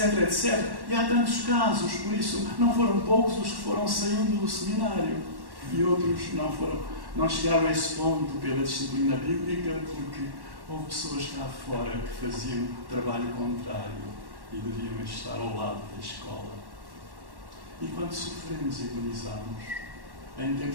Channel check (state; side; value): late; left; 1.1 ms